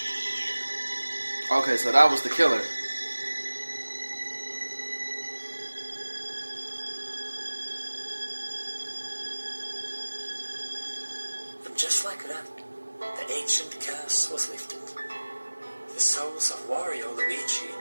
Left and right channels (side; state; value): both; inverted; correlation -1.00